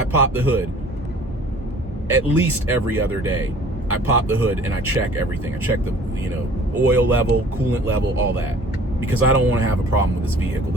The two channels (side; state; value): both; normal; correlation 0.50